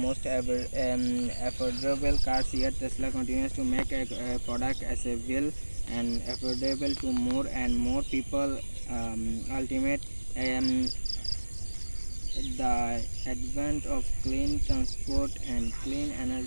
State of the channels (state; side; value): inverted; both; correlation -1.00